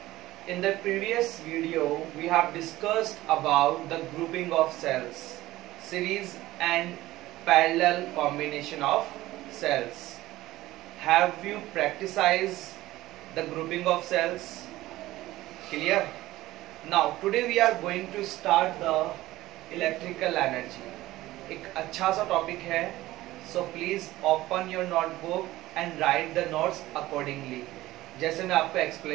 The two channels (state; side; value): quieter; left; 16.7 dB